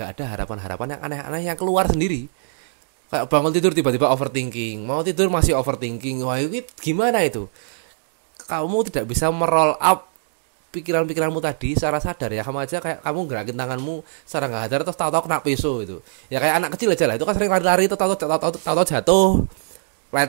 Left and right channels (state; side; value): silent; left; digital silence